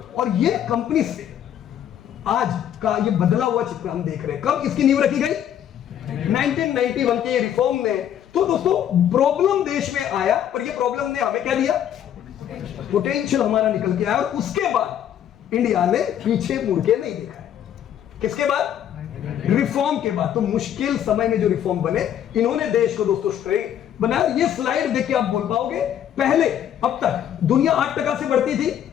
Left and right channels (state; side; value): quieter; right; 10.2 dB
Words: और ये कंपनी से आज का ये बदला हुआ चित्र हम देख रहे हैं। कब इसकी नींव रखी गई? 1991 के रिफॉर्म में। तो दोस्तों प्रॉब्लम देश में आया, पर ये प्रॉब्लम ने हमें क्या दिया? पोटेंशियल हमारा निकल के आया। और उसके बाद इंडिया ने पीछे मुड़ के नहीं देखा है। किसके बाद? रिफॉर्म के बाद। तो मुश्किल समय में जो रिफॉर्म बने, इन्होंने देश को दोस्तों स्ट्रेट बनाया। ये स्लाइड देख के आप बोल पाओगे, पहले अब तक दुनिया 8% से बढ़ती थी,